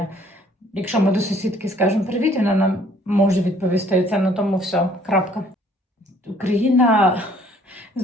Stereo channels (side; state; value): both; normal; correlation 0.59